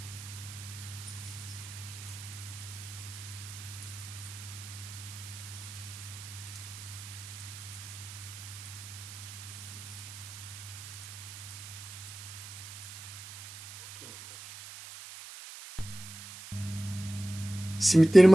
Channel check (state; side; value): noise; right; hiss, 13 dB below the sound